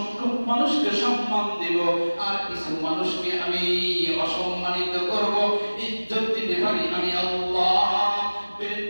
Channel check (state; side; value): inverted; both; correlation -1.00